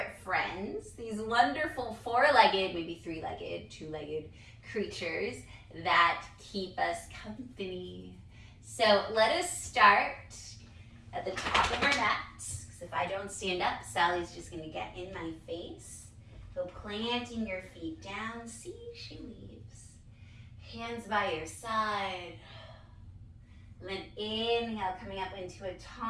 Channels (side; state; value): both; identical; correlation 1.00